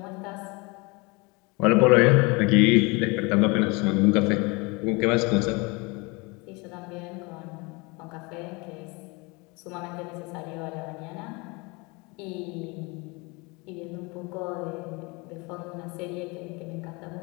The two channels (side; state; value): right; quieter; 27.3 dB